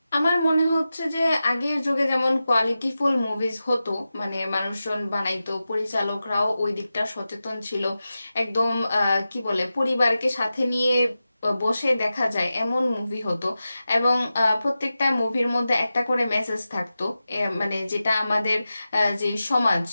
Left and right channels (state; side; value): inverted; both; correlation -0.93